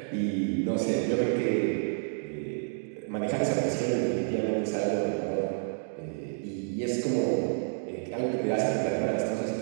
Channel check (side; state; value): left; silent; digital silence